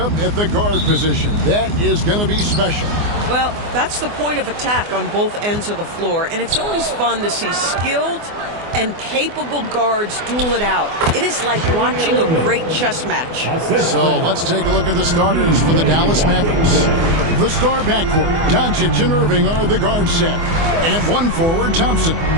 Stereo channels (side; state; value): left; late; 24 ms